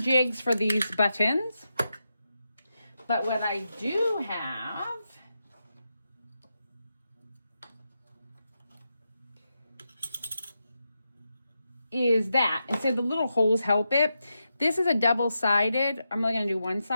for these buttons. But what I do have is that, instead the little holes help it. This is a double-sided. I'm only gonna do one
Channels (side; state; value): both; inverted; correlation -0.87